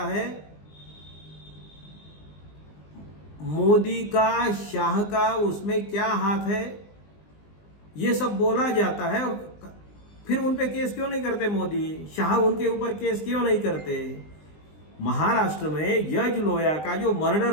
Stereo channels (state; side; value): late; right; 20 ms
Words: है। मोदी का, शाह का उसमें क्या हाथ है, ये सब बोला जाता है। और फिर उन पे केस क्यों नहीं करते मोदी, शाह उनके ऊपर केस क्यों नहीं करते? महाराष्ट्र में जज लोया का जो मर्डर